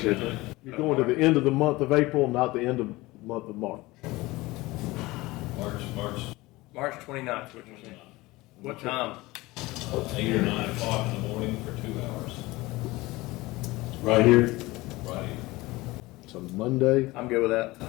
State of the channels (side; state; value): right; quieter; 20.4 dB